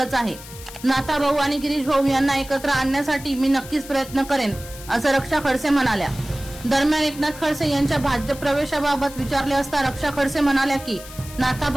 आहे। नाथाभाऊ आणि गिरीश भाऊ यांना एकत्र आणण्यासाठी मी नक्कीच प्रयत्न करेन असं रक्षा खडसे म्हणाल्या। दरम्यान एकनाथ खडसे यांच्या भाजप प्रवेशाबाबत विचारले असता रक्षा खडसे म्हणाल्या की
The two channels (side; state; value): left; noise; hiss, 16 dB below the sound